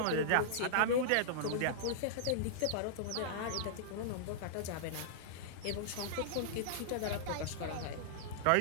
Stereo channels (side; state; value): both; different; correlation -0.02